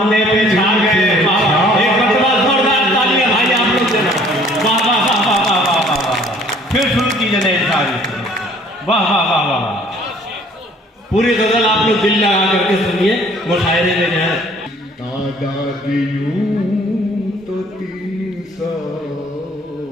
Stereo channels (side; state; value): both; normal; correlation 0.56